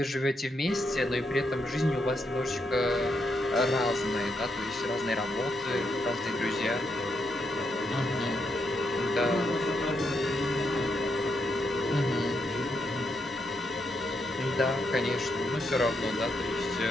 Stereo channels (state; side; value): normal; both; correlation 0.80